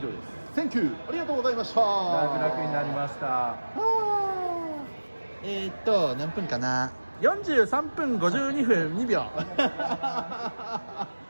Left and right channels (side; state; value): both; inverted; correlation -1.00